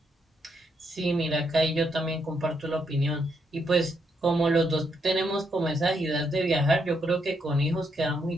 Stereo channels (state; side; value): normal; both; correlation 0.77